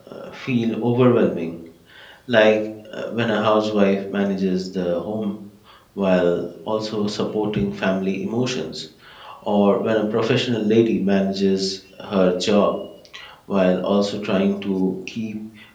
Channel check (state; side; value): identical; both; correlation 1.00